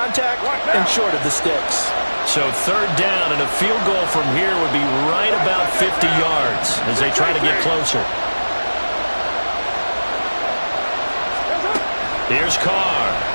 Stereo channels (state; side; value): inverted; both; correlation -1.00